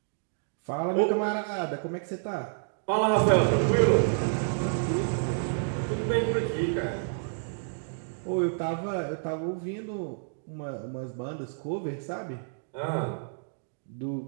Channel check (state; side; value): silent; left; digital silence